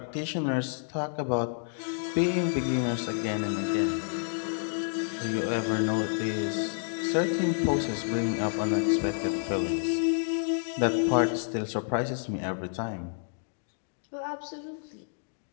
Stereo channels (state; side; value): silent; right; digital silence